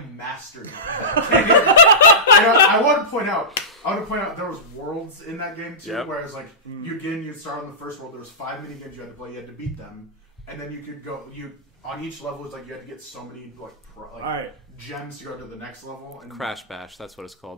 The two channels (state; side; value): normal; both; correlation -0.18